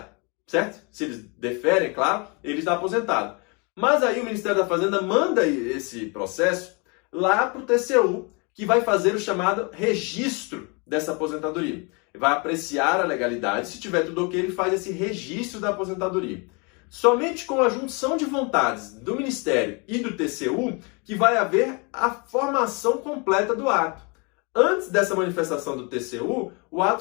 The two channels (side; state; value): right; quieter; 31.6 dB